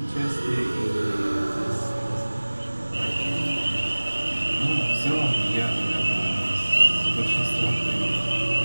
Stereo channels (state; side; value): inverted; both; correlation -1.00